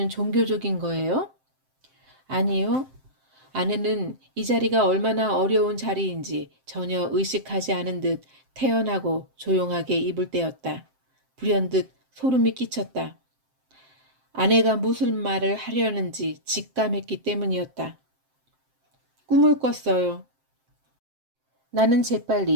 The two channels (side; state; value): left; late; 7.7 ms